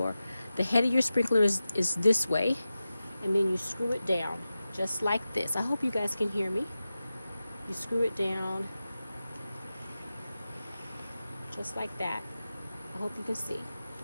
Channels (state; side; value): inverted; both; correlation -0.93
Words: head of your sprinkler is this way. And then you screw it down just like this. I hope you guys can hear me. You screw it down just like that. I hope you can see.